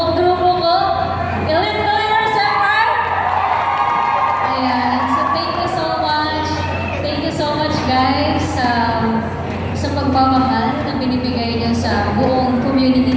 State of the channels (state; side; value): identical; both; correlation 1.00